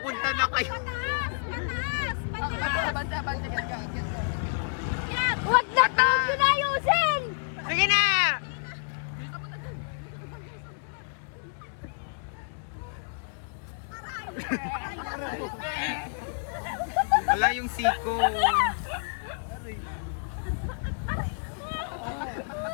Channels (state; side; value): silent; right; digital silence